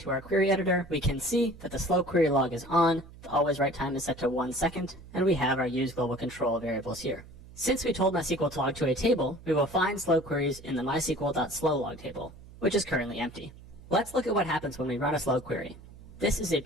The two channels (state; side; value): noise; right; hum, 19 dB below the sound